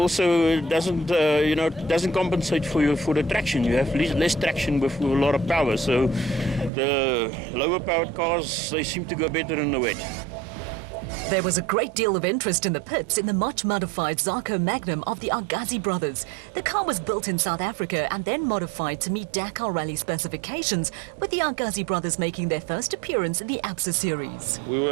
doesn't compensate for the traction. You have less traction with a lot of power. So the lower powered cars, they seem to go better in the wet. There was a great deal of interest in the pits in the much modified Zarco Magnum of the Argazi brothers. The car was built in South Africa and then modified to meet Dakar Rally specifications, with the Argazi brothers making their first appearance in the ABSA series. We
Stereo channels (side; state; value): left; drops out; at 6.7 s